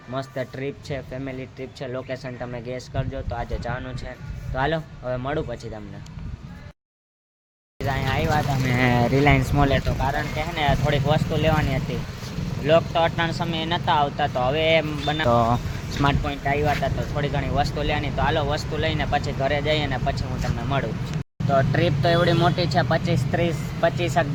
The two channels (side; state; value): both; identical; correlation 1.00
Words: મસ્ત ટ્રીપ છે, ફેમિલી ટ્રીપ છે. લોકેશન તમે ગેસ કરજો. તો આજે જવાનું છે, તો હાલો હવે મળું પછી તમને. અહીંયા આવ્યા હતા અમે રિલાયન્સ મોલે, તો કારણ કે હે ને થોડીક વસ્તુ લેવાની હતી. વ્લોગ તો અટાણ સમયે નહોતા આવતા, તો હવે તો સ્માર્ટ પોઈન્ટ આવ્યા હતા, તો થોડી ઘણી વસ્તુ લેવાની. તો હાલો વસ્તુ લઈને પછી ઘરે જઈએ ને પછી હું તમને મળું. તો ટ્રીપ તો એવડી મોટી છે, 25-30